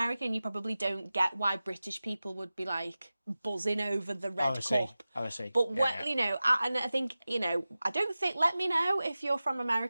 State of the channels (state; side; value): inverted; both; correlation -0.96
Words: you probably don't get why British people would be like buzzing over the red cup. I see. But you know, and I think, you know, I don't think, let me know if you're from